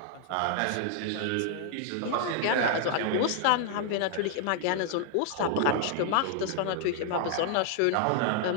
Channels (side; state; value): both; different; correlation 0.00